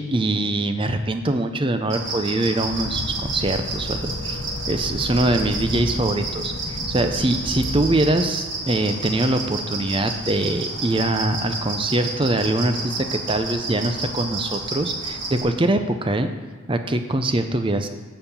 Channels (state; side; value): normal; both; correlation 0.61